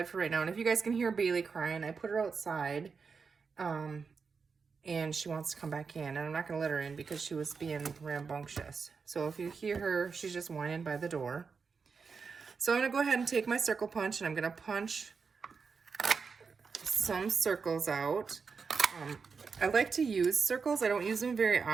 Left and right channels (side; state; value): left; quieter; 5.3 dB